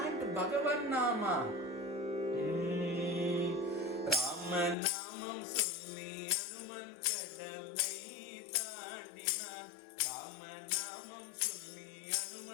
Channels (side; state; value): right; drops out; at 4.8 s